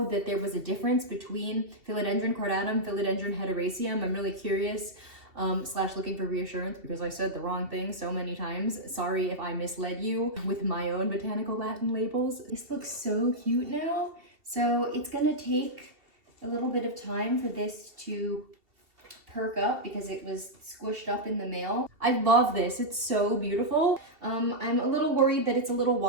that there was a difference between Philodendron cordatum, Philodendron hederaceum. I'm really curious. / looking for reassurance because I said the wrong thing so many times. Sorry if I misled you with my own botanical Latin labels. This looks so cute now. So it's gonna take a little bit of time for this to perk up because it was squished up in the mail. I love this, it's so beautiful. I'm a little worried that it's a little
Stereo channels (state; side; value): late; left; 2.7 ms